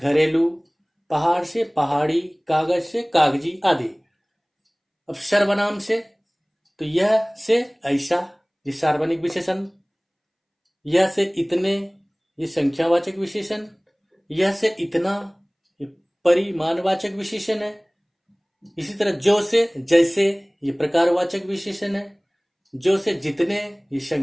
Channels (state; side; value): identical; both; correlation 1.00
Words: पहाड़ से पहाड़ी, कागज से कागजी आदि। अब सर्वनाम से तो यह से ऐसा, ये सार्वजनिक विशेषण। यह से इतने, ये संख्यावाचक विशेषण। यह से इतना, ये परिमाणवाचक विशेषण है। इसी तरह जो से जैसे, ये प्रकारवाचक विशेषण है। जो से जितने, ये